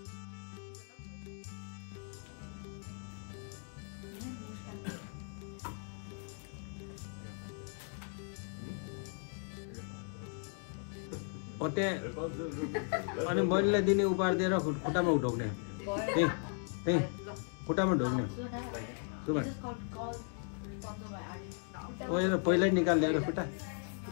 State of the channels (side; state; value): right; silent; 53 dB below the other